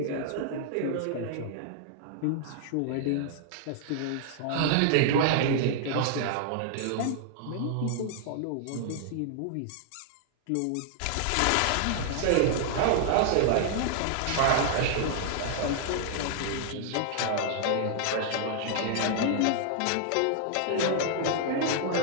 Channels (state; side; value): different; both; correlation -0.01